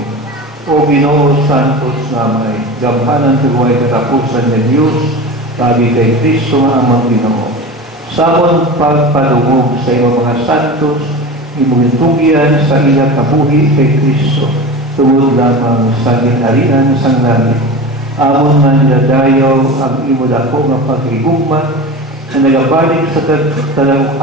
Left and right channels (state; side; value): normal; both; correlation 0.30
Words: O Ginoo Santos namay, gamhanan tuway katapusan ng Diyos, tabi kay Kristo nga amang Ginoo. Samon pagpadungog sa iyong mga santos, imugintugyan sa ilang kabuhi kay Kristo, tungod lamang sa ginharian sang langit. Amon man dadayaw ang imo dako nga paghigugma, na nagabalik sa